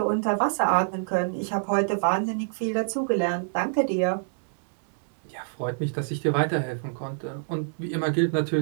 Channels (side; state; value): left; silent; digital silence